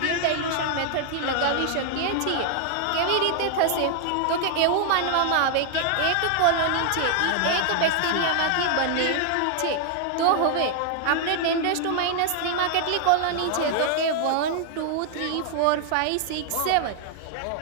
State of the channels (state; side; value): different; both; correlation 0.00